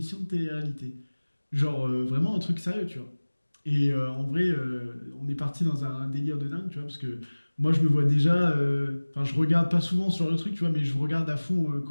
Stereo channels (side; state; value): both; inverted; correlation -1.00